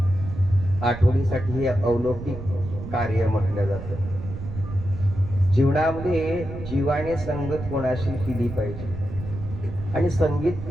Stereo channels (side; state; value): right; noise; rumble, 9 dB below the sound